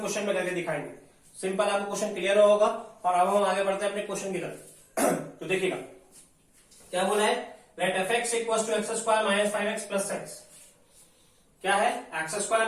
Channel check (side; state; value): both; identical; correlation 1.00